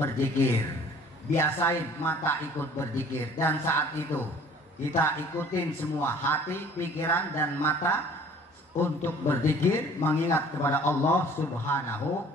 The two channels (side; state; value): both; normal; correlation 0.50